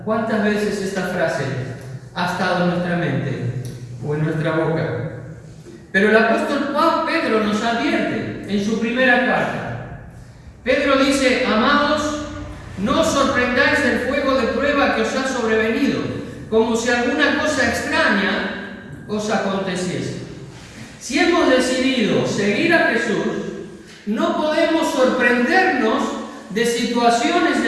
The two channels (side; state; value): both; identical; correlation 1.00